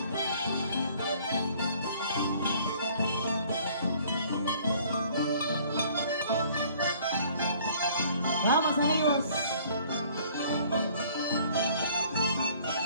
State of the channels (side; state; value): both; inverted; correlation -0.56